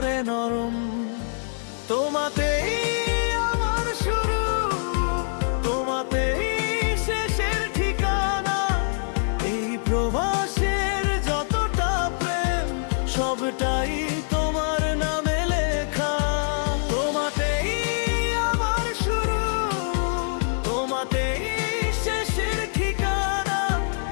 নরম। তোমাতেই আমার শুরু, তোমাতেই শেষের ঠিকানা। এই প্রবাসের যতটা প্রেম সবটাই তোমার নামে লেখা। তোমাতেই আমার শুরু, তোমাতেই শেষের ঠিকানা।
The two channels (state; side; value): silent; right; digital silence